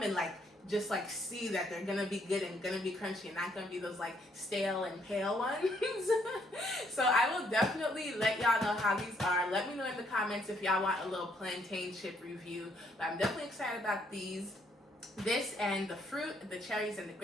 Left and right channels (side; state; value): both; normal; correlation 0.70